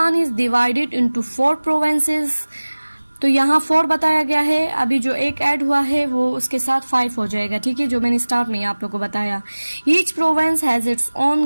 is divided into 4 provinces. तो यहाँ 4 बताया गया है, अभी जो एक ऐड हुआ है वो उसके साथ 5 हो जाएगा, ठीक है, जो मैंने स्टार्ट में आप लोगों को बताया। Each province has its own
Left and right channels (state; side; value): inverted; both; correlation -1.00